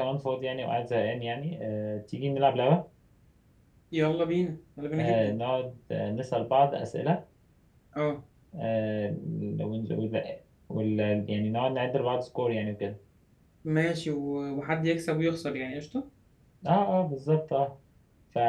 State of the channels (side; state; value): both; identical; correlation 1.00